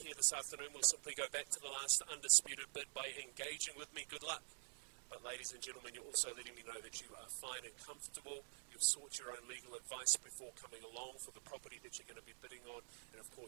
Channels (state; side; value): silent; left; digital silence